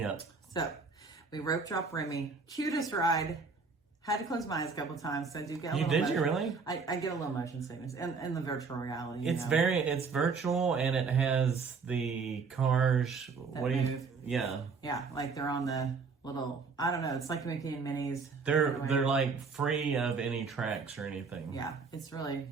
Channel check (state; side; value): quieter; left; 4.9 dB